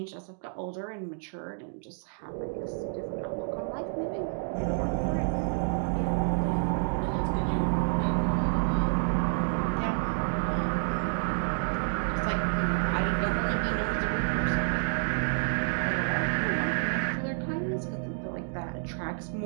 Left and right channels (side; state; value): left; silent; digital silence